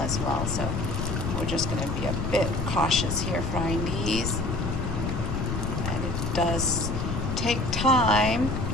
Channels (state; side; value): noise; left; rumble, 2 dB below the sound